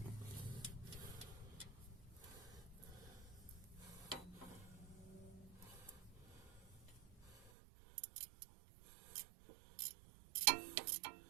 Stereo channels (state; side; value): drops out; left; at 7.5 s